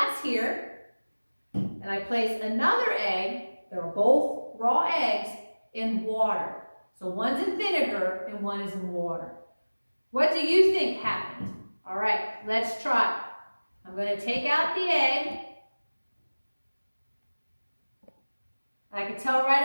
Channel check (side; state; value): both; inverted; correlation -1.00